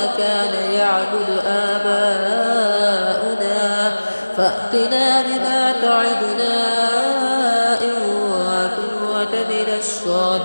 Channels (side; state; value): both; inverted; correlation -1.00